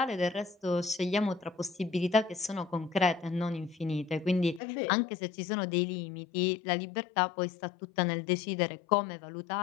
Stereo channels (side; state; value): right; drops out; at 4.6 s